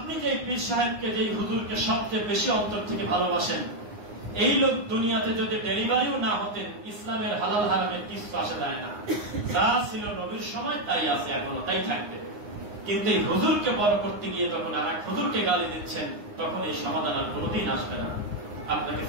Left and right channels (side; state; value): left; late; 9.7 ms